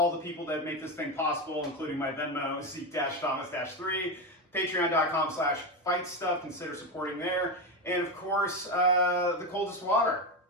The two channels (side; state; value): both; normal; correlation 0.14